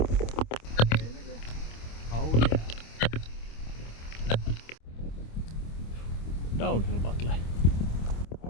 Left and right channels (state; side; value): late; right; 26 ms